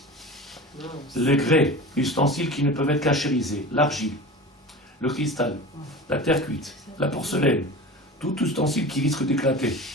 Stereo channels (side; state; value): both; normal; correlation 0.34